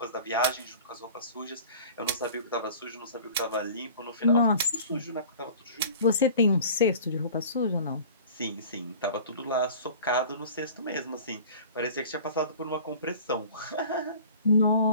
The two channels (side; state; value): both; inverted; correlation -0.43